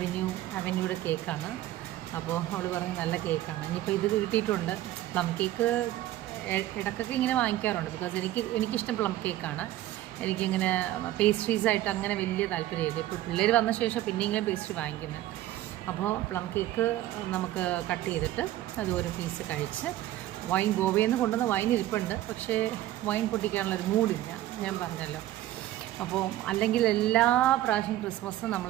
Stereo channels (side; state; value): left; quieter; 14.5 dB